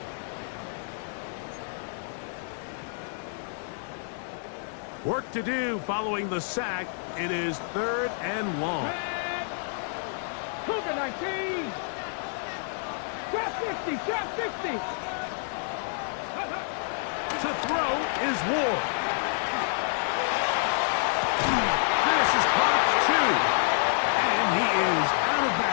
Work to do following the sack. It is 3rd and long. Cougar 19. Trap 50. Trap 50. To throw is Ward. This is caught 2. And he is out of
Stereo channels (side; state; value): right; silent; digital silence